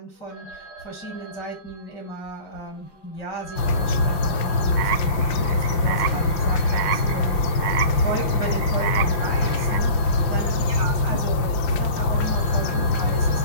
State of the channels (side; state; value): right; late; 5.7 ms